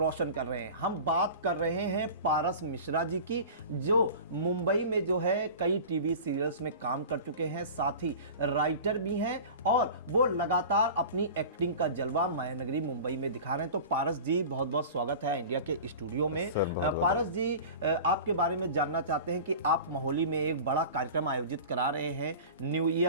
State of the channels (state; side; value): inverted; both; correlation -0.36